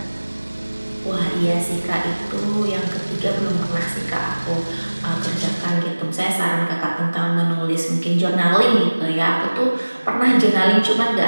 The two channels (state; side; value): inverted; both; correlation -1.00